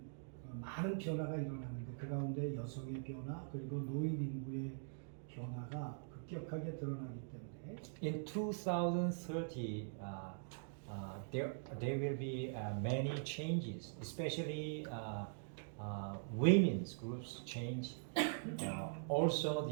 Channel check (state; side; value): silent; left; digital silence